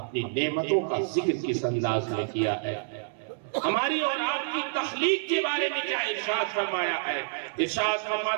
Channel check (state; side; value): silent; left; 59 dB below the other